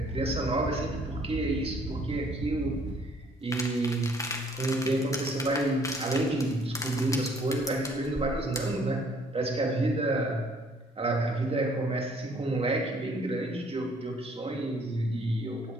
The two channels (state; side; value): normal; both; correlation 0.61